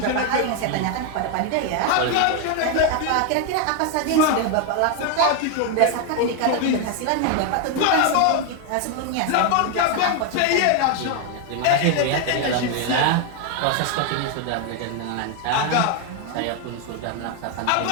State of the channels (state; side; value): different; both; correlation 0.01